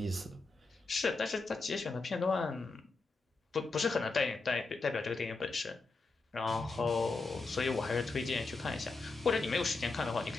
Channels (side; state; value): right; quieter; 3.8 dB